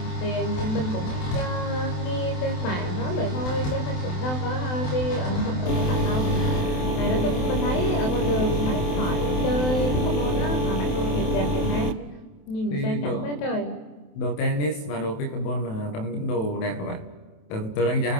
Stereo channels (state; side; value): late; right; 27 ms